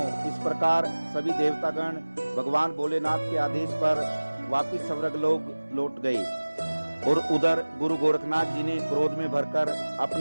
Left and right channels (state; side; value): inverted; both; correlation -1.00